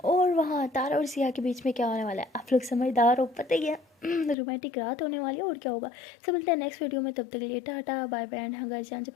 और वहाँ तारा और सिया के बीच में क्या होने वाला है आप लोग समझदार हो, पता ही है। रोमांटिक रात होने वाली है और क्या होगा। सब मिलते हैं नेक्स्ट वीडियो में, तब तक के लिए टाटा बाय बाय एंड हाँ गाइस, जाने से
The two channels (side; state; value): right; drops out; at 4.4 s